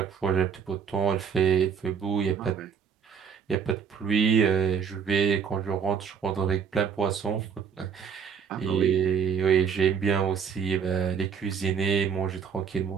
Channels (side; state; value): left; quieter; 6.9 dB